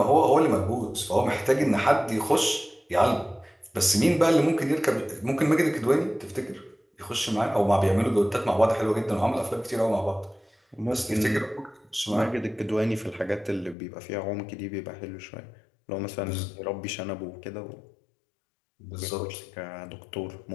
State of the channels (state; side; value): drops out; right; at 13.8 s